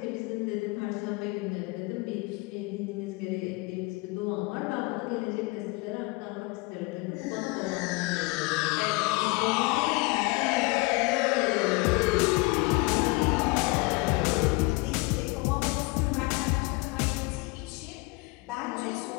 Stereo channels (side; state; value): right; quieter; 24.7 dB